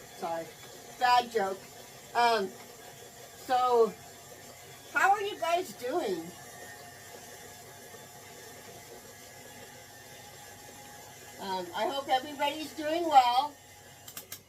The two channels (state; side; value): identical; both; correlation 1.00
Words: Sorry, bad joke. So, how are you guys doing? I hope everybody's doing well.